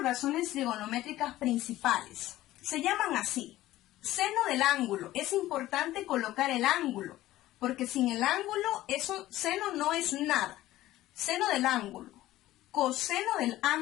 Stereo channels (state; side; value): quieter; right; 15.5 dB